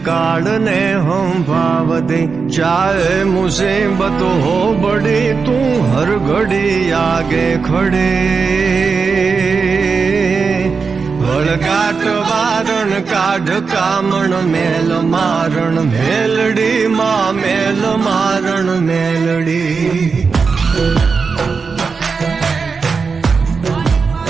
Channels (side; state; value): left; quieter; 5.1 dB